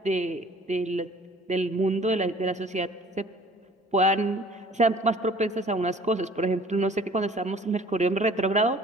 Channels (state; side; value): normal; both; correlation 0.52